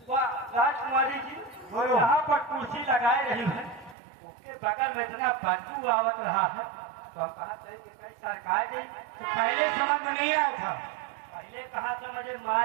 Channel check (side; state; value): left; drops out; at 4.0 s